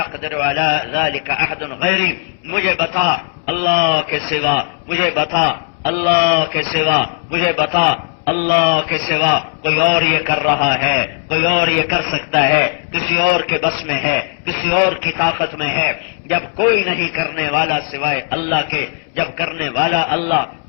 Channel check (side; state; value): right; silent; 68 dB below the other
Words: على ذلك احد غیری، مجھے بتا اللہ کے سوا، مجھے بتا اللہ کے سوا، مجھے بتا اللہ کے سوا کوئی اور یہ کر رہا ہے، کوئی اور یہ کر سکتا ہے، کسی اور کے بس میں ہے، کسی اور کی طاقت میں ہے، جب کوئی نہیں کرنے والا سوائے اللہ کے، جب کرنے والا اللہ،